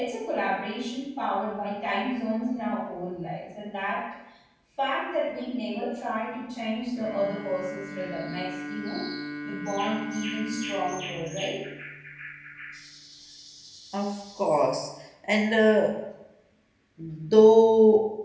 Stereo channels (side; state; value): both; identical; correlation 1.00